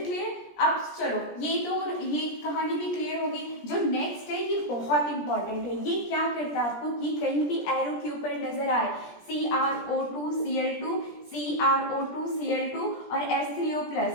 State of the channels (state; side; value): late; right; 17 ms